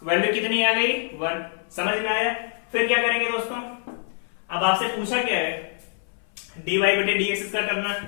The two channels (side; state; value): right; silent; 59 dB below the other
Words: value कितनी आ गई 1, समझ में आया। फिर क्या करेंगे दोस्तों, अब आपसे पूछा क्या है, dy बटे dx इसका करना।